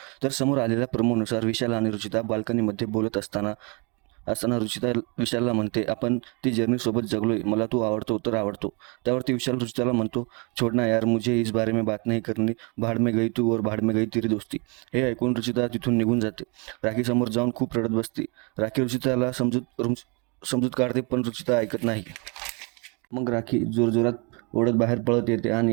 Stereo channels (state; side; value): quieter; left; 32.0 dB